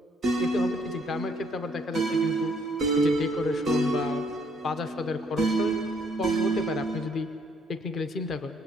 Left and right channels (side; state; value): both; normal; correlation 0.66